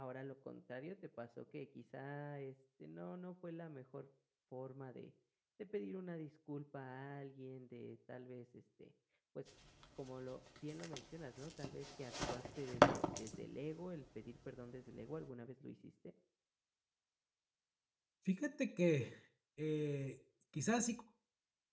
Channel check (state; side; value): identical; both; correlation 1.00